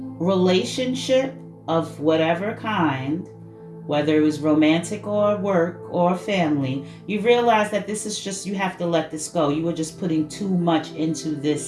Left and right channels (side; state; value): both; identical; correlation 1.00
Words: relationship of whatever kind, whether it was romantic or work or family, you realize that this is just, you have to let this go. You were just putting too much into